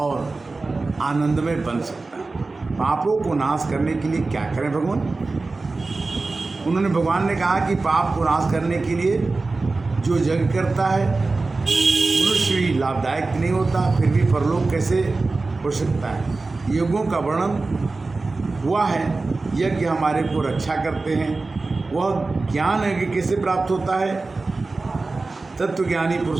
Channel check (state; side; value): quieter; left; 3.6 dB